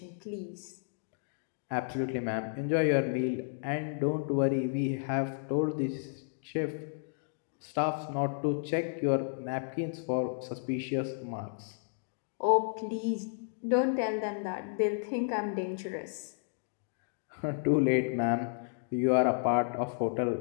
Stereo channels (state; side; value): silent; right; digital silence